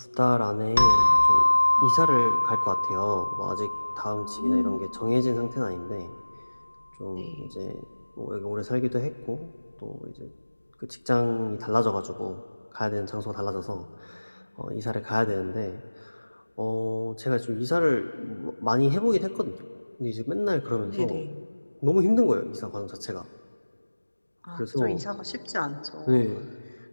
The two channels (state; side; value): inverted; both; correlation -1.00